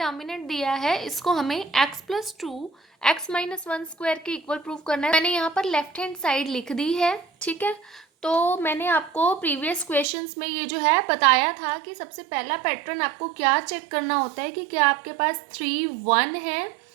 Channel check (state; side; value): drops out; left; at 10.1 s